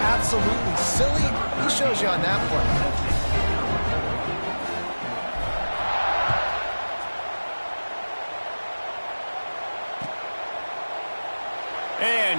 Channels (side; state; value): both; inverted; correlation -1.00